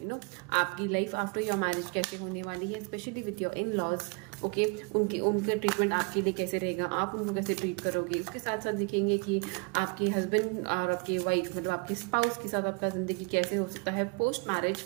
आपकी लाइफ आफ्टर योर मैरिज कैसे होने वाली है, specially with your in laws. Okay, उनका ट्रीटमेंट आपके लिए कैसे रहेगा, आप उनको कैसे ट्रीट करोगे। उसके साथ साथ देखेंगे कि आपके हस्बैंड और आपके वाइफ मतलब आपके स्पाउस के साथ आपका ज़िंदगी कैसे हो सकता है post marriage.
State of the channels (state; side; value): quieter; left; 33.6 dB